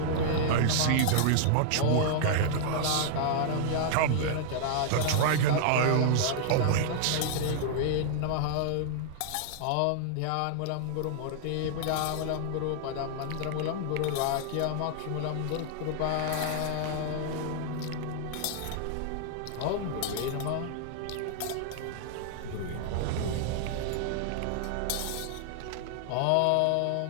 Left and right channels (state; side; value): different; both; correlation -0.01